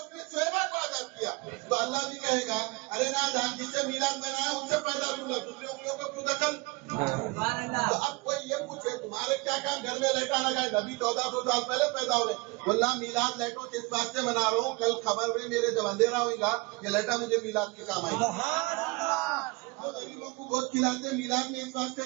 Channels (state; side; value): quieter; left; 25.9 dB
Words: نے شعیبہ کو آزاد کیا. تو اللہ بھی کہے گا ارے نہ جان, جس سے میلاد بنایا ان سے پیدا دوں گا, دوسری انگلیوں کو کیوں دخل. تو اب کوئی یہ پوچھے تمہارے کیا کام گھر میں لیٹا لگائے, نبی 1400 سال پہلے پیدا ہو گئے. واللہ میلاد لیٹوں کے اس بات سے منا رہا ہوں, کل خبر میں میرے جب اندھیرا ہوگا یہ لیٹا مجھے میلاد کے کام آئے گا. غریبوں کو بہت کھلاتے, میلاد میں اس واسطے